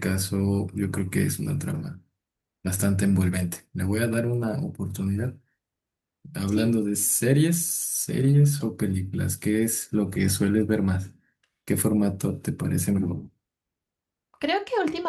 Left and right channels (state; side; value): identical; both; correlation 1.00